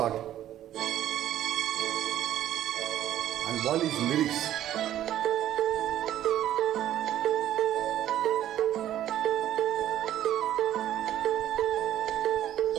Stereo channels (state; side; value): quieter; left; 12.1 dB